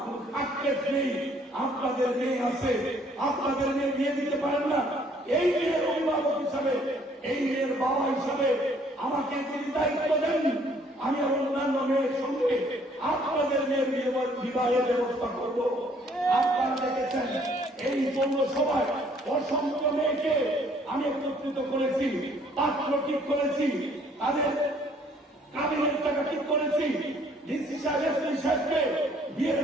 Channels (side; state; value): both; normal; correlation 0.62